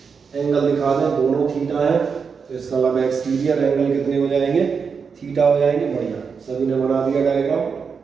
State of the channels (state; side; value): quieter; left; 5.8 dB